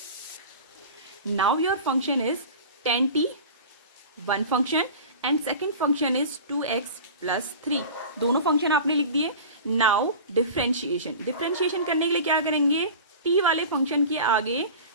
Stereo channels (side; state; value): both; inverted; correlation -0.35